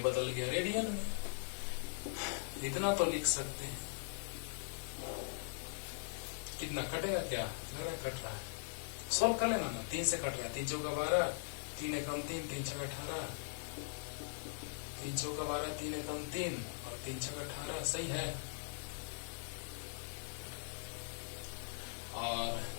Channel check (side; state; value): right; silent; digital silence